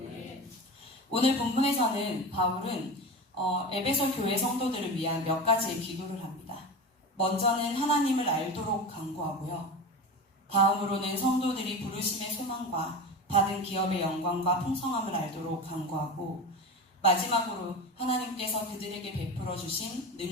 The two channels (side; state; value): both; normal; correlation 0.27